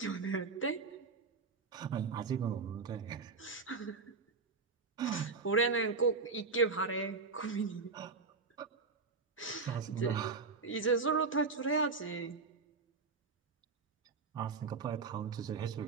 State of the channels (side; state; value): left; quieter; 4.5 dB